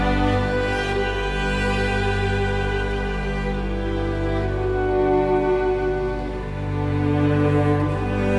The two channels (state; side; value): identical; both; correlation 1.00